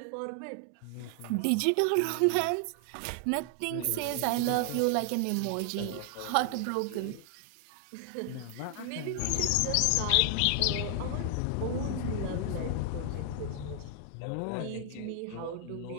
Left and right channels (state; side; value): different; both; correlation 0.00